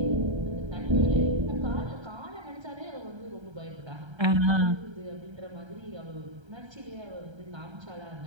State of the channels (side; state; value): left; late; 1.3 ms